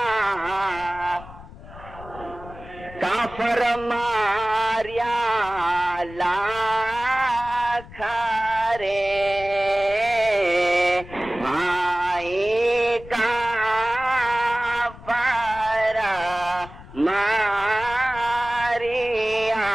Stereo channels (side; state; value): left; noise; rumble, 17 dB below the sound